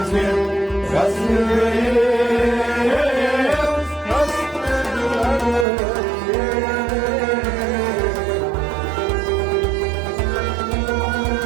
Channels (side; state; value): left; drops out; at 5.7 s